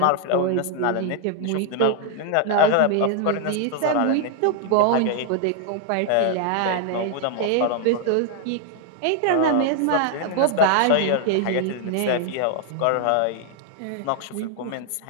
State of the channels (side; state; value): both; different; correlation 0.00